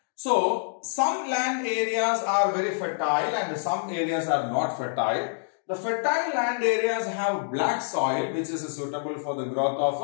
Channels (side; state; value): right; silent; digital silence